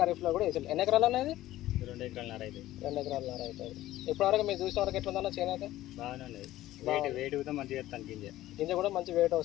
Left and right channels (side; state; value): right; quieter; 15.1 dB